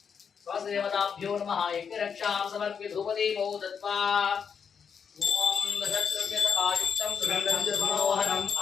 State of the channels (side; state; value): right; quieter; 6.8 dB